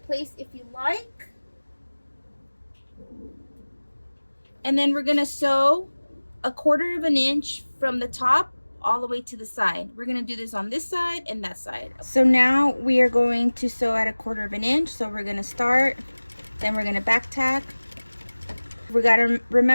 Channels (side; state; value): both; inverted; correlation -1.00